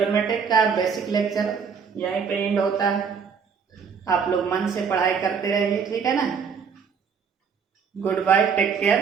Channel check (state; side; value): quieter; left; 6.3 dB